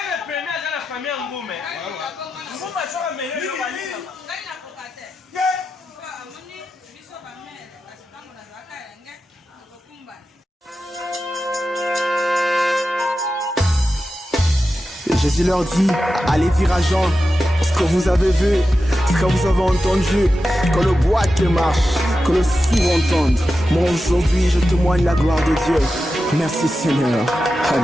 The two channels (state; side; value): normal; both; correlation 0.91